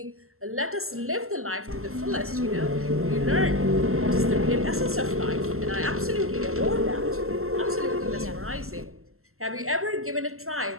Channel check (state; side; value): late; left; 0.62 ms